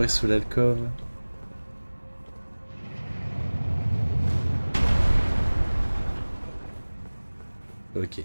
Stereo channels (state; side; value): inverted; both; correlation -1.00